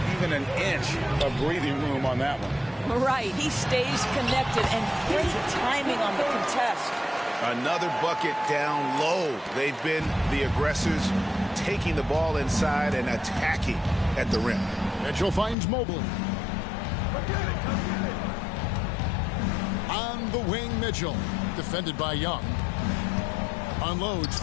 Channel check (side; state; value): right; drops out; at 15.6 s